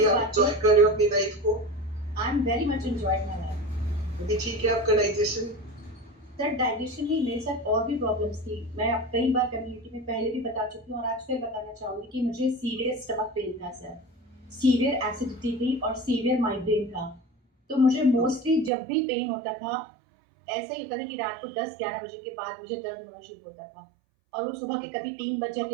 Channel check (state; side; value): drops out; left; at 18.7 s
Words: इस आप बात एंजॉय में कर रहे हो अपनी लाइफ को? I am very much enjoying my life. अभी ठीक है आपका डाइजेशन? सर डाइजेशन नहीं, मेरे साथ और भी प्रॉब्लम्स थी। मैं अब कई बार कम्युनिटी में पहले भी बता चुकी हूँ और आज फिर बताना चाहूंगी कि मुझे सीवियर स्टमक पेन था सर, सीवियर एसिडिटी थी और सीवियर माइग्रेन था। तो मुझे मोस्टली जब भी पेन होता था, ऐसा ही होता था कि रात को 10-11 बजे के बाद मुझे दर्द होना शुरू होता था, और वो सुबह के कभी 3 बज